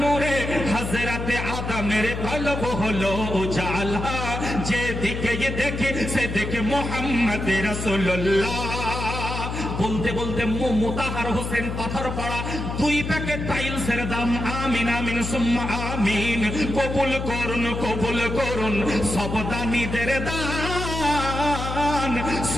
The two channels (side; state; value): left; noise; hum, 4 dB below the sound